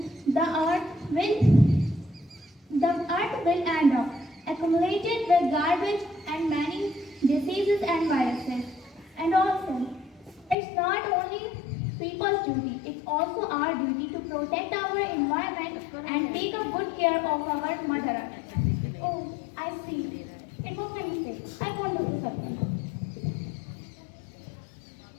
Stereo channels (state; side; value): drops out; right; at 10.6 s